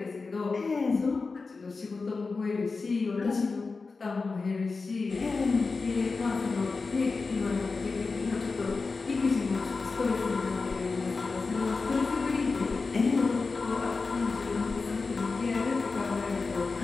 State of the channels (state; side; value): quieter; right; 4.2 dB